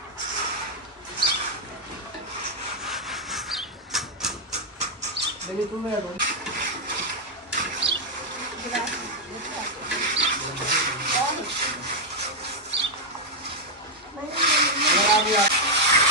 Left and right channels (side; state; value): both; normal; correlation -0.01